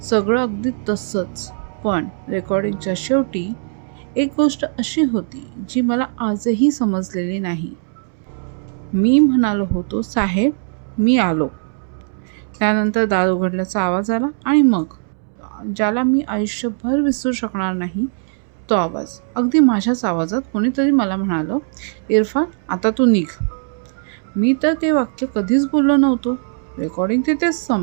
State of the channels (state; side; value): silent; left; 66 dB below the other